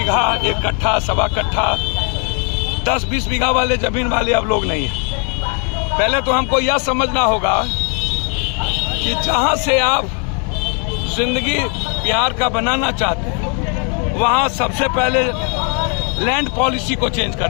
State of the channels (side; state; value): right; quieter; 37.4 dB